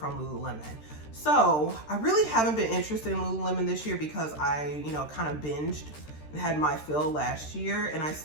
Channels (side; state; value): right; late; 13 ms